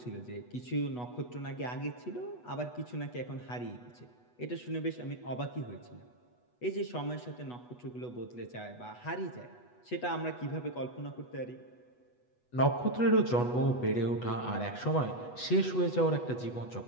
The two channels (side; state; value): right; late; 8.2 ms